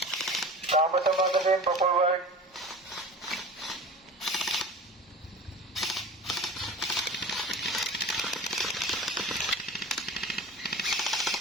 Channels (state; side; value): normal; both; correlation 0.36